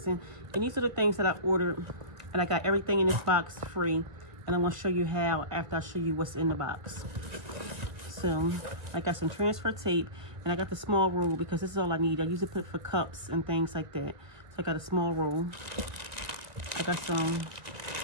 And these are the things that I ordered. And I got everything in this box free. And I want to show you how after I show you what's in the box. So, I got some transfer tape. And I got the small roll because this is all I need. I usually put it for cups and things like that. So, I got a small roll. I got some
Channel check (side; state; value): left; late; 1.8 ms